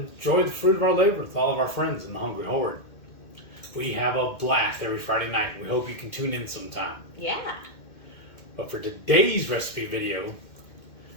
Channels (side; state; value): right; late; 2.1 ms